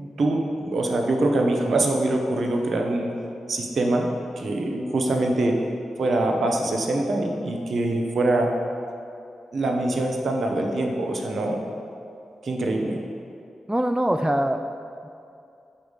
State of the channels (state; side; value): normal; both; correlation 0.90